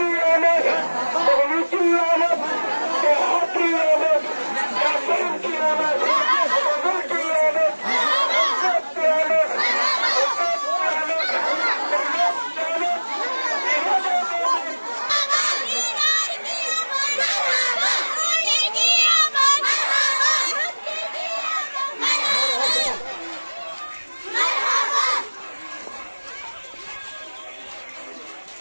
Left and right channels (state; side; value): inverted; both; correlation -1.00